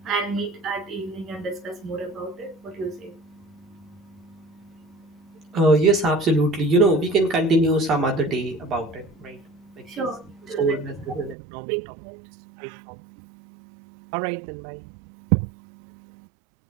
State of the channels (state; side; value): drops out; left; at 11.4 s